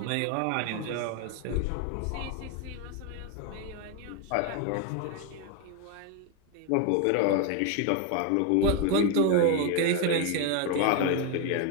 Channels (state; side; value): different; both; correlation 0.01